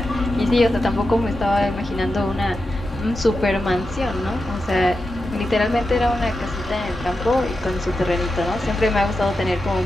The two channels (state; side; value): normal; both; correlation 0.89